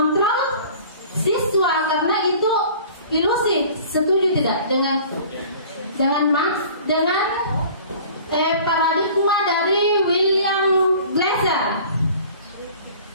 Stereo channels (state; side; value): inverted; both; correlation -0.46